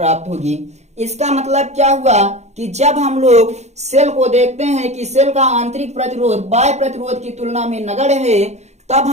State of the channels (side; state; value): left; late; 0.33 ms